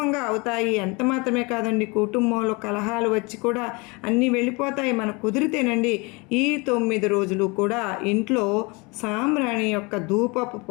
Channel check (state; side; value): quieter; right; 27.5 dB